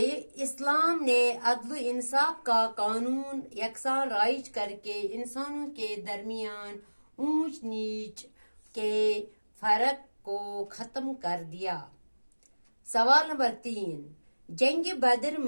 इस्लाम ने अदल इंसाफ का कानून यकसान राइज करके इंसानों के दरमियान ऊंच नीच के फर्क को खत्म कर दिया। सवाल नंबर 3, जंग बदर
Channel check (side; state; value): both; inverted; correlation -1.00